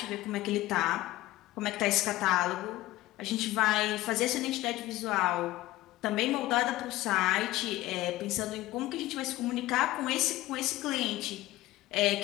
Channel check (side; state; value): right; quieter; 17.2 dB